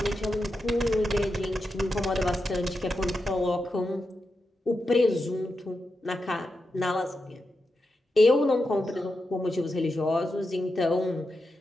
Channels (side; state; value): both; normal; correlation 0.88